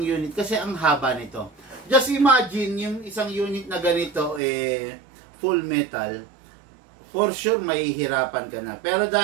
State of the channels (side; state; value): left; drops out; at 4.4 s